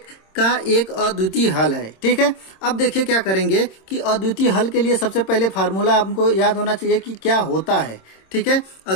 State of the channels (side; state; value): right; late; 26 ms